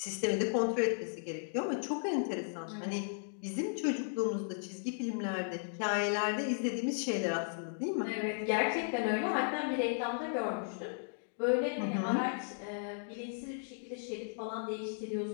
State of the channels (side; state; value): right; silent; digital silence